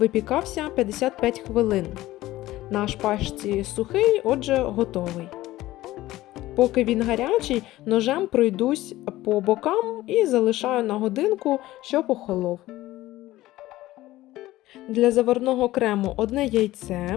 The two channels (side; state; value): right; quieter; 16.5 dB